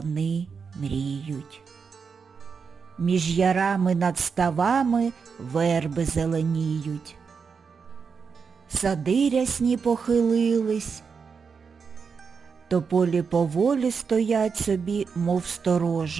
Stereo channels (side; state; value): left; quieter; 5.7 dB